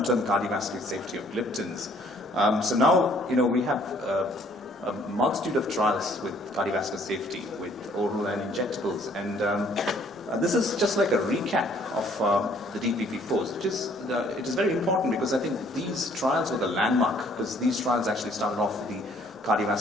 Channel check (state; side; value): normal; both; correlation 0.61